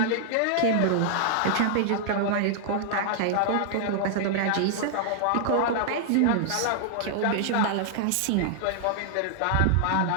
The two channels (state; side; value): different; both; correlation -0.01